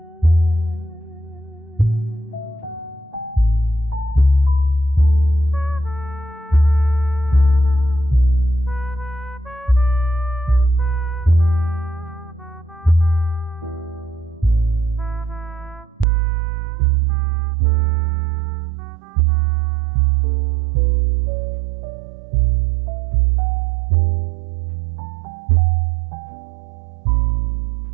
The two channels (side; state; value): left; drops out; at 16.1 s